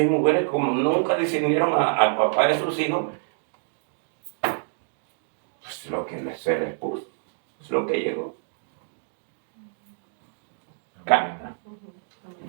mujeres como nunca discernieron al papá de sus hijos, pues lo que se les puso, es lo que llegó. Carta.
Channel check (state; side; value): silent; left; digital silence